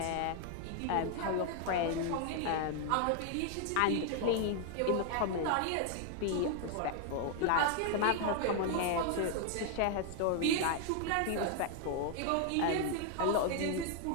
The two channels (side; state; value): both; different; correlation 0.00